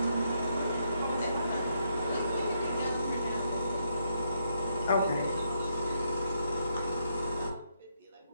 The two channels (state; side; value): inverted; both; correlation -0.77